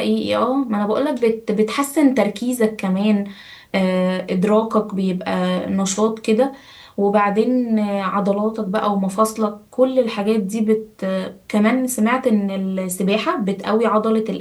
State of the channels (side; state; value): both; identical; correlation 1.00